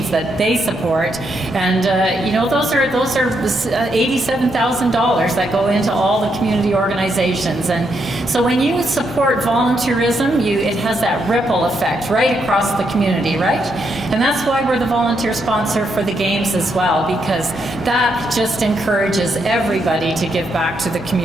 that they support, and those are $87,000 that go into all the community organizations. And so when you support volunteerism, it has that ripple effect right across the community, right? And that's why we're the volunteer sponsor for the Games as well, because that just encourages everybody to give back to the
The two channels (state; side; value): normal; both; correlation 0.79